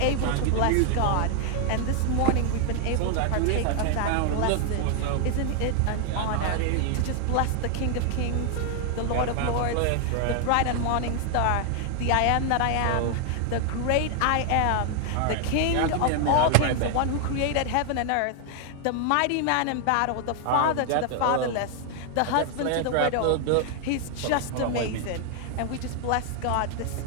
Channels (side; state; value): both; different; correlation 0.00